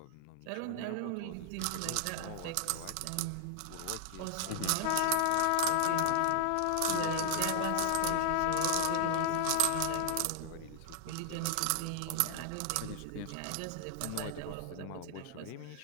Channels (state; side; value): different; both; correlation -0.01